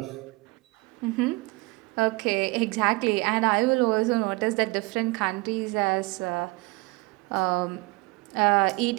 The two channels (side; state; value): left; quieter; 24.6 dB